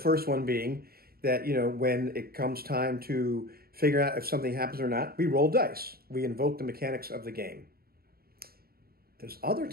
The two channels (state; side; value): late; left; 0.44 ms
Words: one being that, when it comes time to figure out if something happens or not, we roll dice. We invoke the mechanics of the game. There's other